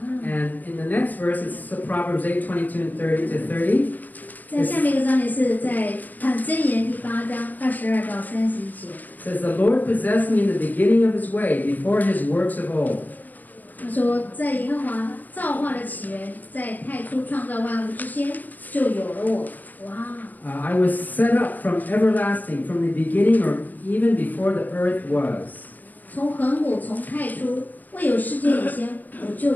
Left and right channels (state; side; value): late; right; 0.084 ms